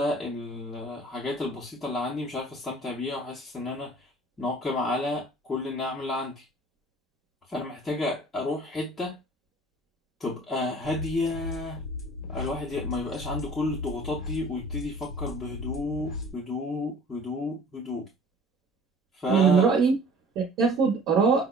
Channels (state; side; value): normal; both; correlation 0.48